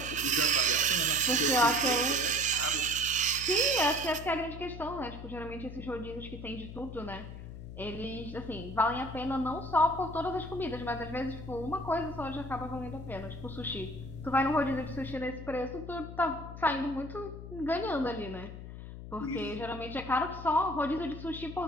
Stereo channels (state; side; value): noise; left; hum, 11 dB below the sound